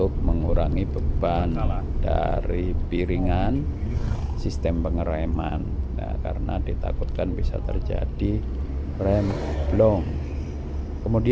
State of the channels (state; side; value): identical; both; correlation 1.00